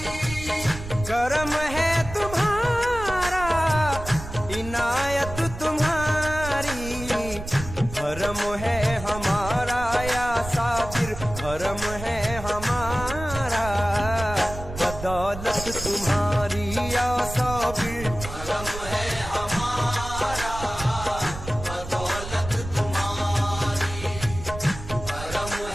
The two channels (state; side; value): noise; right; rumble, 10 dB below the sound